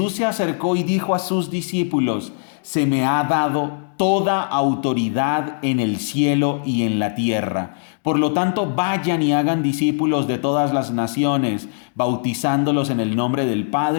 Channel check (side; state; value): right; silent; digital silence